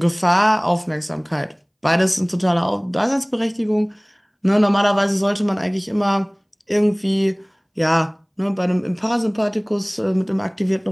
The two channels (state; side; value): identical; both; correlation 1.00